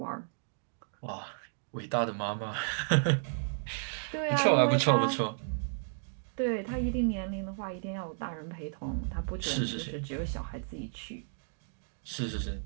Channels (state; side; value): silent; left; digital silence